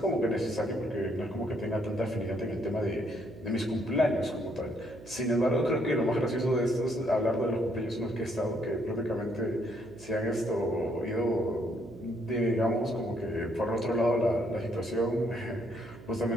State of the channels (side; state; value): right; noise; hum, 18 dB below the sound